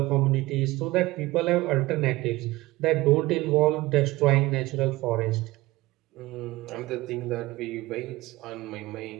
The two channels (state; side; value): quieter; left; 19.5 dB